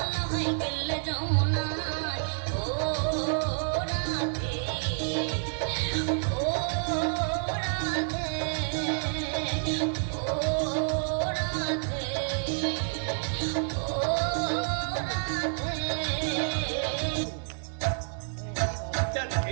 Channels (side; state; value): left; silent; digital silence